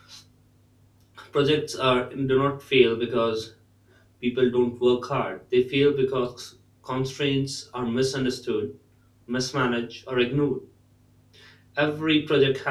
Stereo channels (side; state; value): both; identical; correlation 1.00